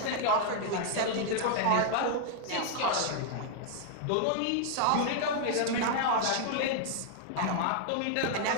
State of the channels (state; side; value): different; both; correlation 0.00